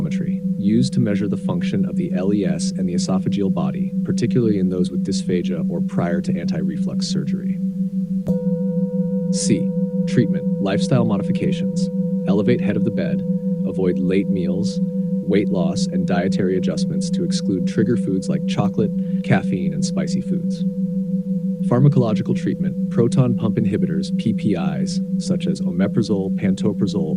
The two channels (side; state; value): both; identical; correlation 1.00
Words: used to measure the function of the LES and the esophageal body, particularly in those with dysphagia or prior to anti-reflux surgery. C. Treatment: lifestyle modifications. Elevate head of the bed, avoid late meals, weight loss, and dietary adjustments to exclude trigger foods like chocolate, caffeine, and spicy foods. Pharmacological treatment: proton pump inhibitors, PPIs, such as omeprazole,